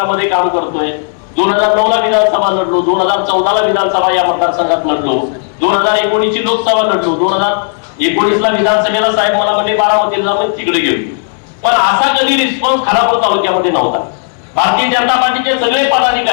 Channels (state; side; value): silent; right; 68 dB below the other